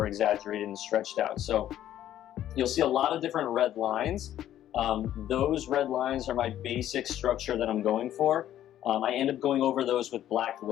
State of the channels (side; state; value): right; quieter; 11.9 dB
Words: exaggerated and stretched out. So you'll see a lot of different red lines. Those red lines are my basic structure that I'm going for. I end up going over those with black